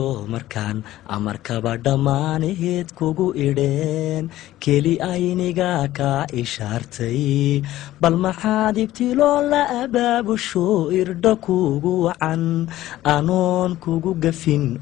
markaan amarkaba dhammaanaheed kugu idheen keli ayniga kaa ishaartay bal maxaad ibtiloo la abaabusho irdha kugu wacan anoon kugu gafin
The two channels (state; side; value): quieter; right; 14.8 dB